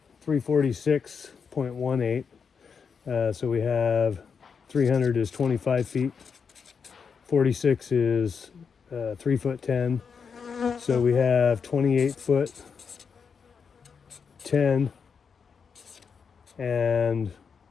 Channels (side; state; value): right; quieter; 6.1 dB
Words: 346.18. So we have 300 is 25 feet. 46 is 3 foot 10. So we have 28 foot 10 and